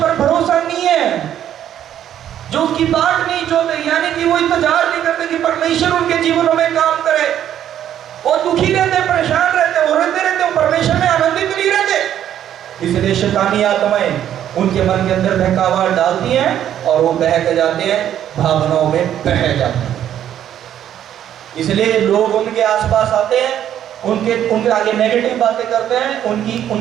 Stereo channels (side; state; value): left; quieter; 10.6 dB